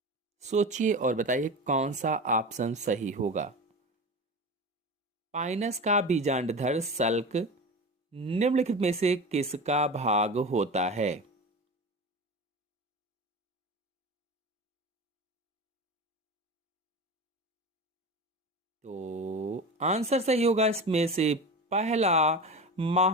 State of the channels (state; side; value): normal; both; correlation 0.28